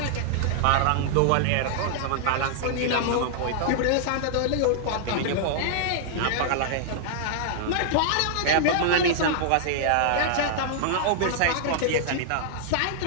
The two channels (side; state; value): both; different; correlation -0.01